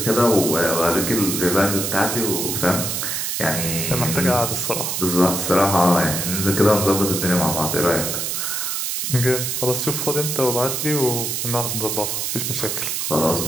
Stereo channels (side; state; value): right; noise; hiss, 1 dB below the sound